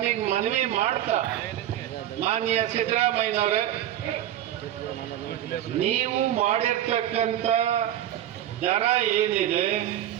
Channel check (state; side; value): quieter; left; 12.1 dB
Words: ಮನವಿ ಮಾಡ್ತಾ, ಮಾನ್ಯ ಸಿದ್ದರಾಮಯ್ಯನವರೇ, ನೀವು ಮಾಡಿರ್ತಕ್ಕಂಥ ದರ ಏನಿದೆ